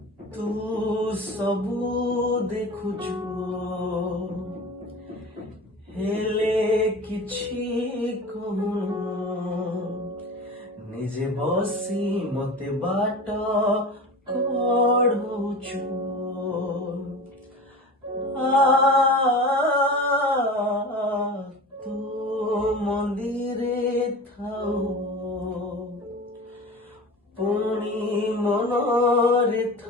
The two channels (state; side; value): normal; both; correlation 0.34